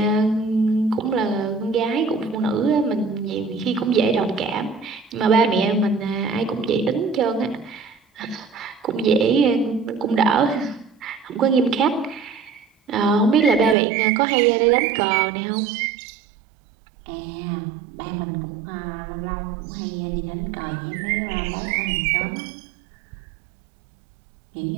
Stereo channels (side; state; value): left; drops out; at 13.8 s